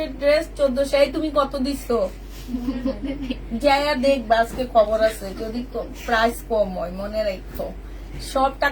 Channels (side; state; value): both; identical; correlation 1.00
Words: এর ড্রেস 1400। এই তুমি কত দিছো? যাইয়া দেখবা, আজকে খবর আছে। যদি প্রাইস কম হয় মনে রাখো, সব